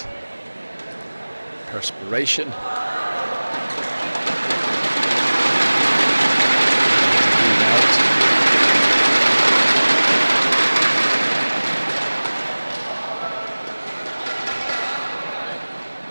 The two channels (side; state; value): both; inverted; correlation -1.00